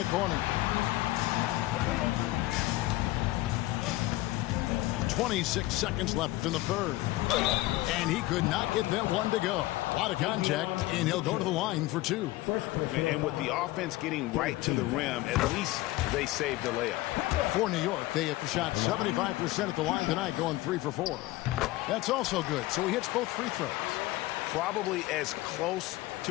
corner. 26 seconds left in the third. And he could not get that one to go. A lot of contact, and he'll go to the line for 2. And with the offense getting right to the rim, at least they saved the layup. For New York, they have shot 75% at the line tonight, going 3 for 4. That's also good, so he hits both free throws. Probably as close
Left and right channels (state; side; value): quieter; right; 18.2 dB